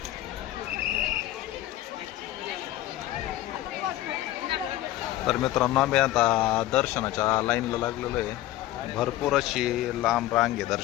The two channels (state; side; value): quieter; right; 15.0 dB